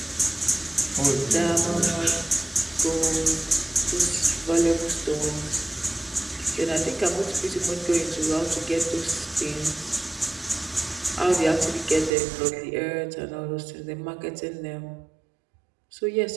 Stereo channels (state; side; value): drops out; left; at 12.1 s